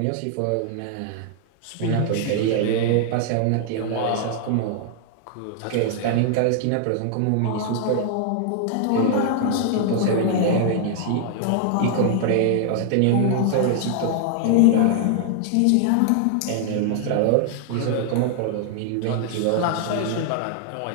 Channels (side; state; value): both; different; correlation 0.00